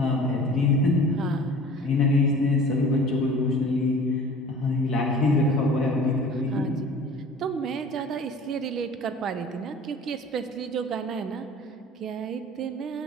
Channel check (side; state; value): both; normal; correlation 0.43